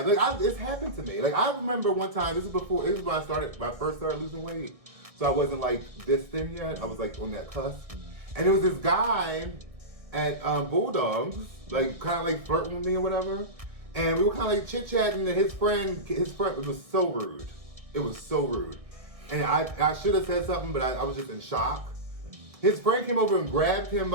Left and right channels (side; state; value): left; late; 1.6 ms